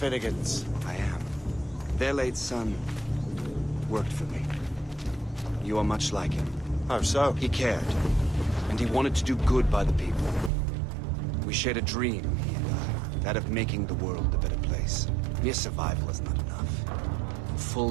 I am. Their late son worked for me. You are much like him. How so? He cared, and he wanted to do good by the people. We shared a dream, he and I, that of making the world a better place. Mere survival is not enough.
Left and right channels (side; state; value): left; drops out; at 10.5 s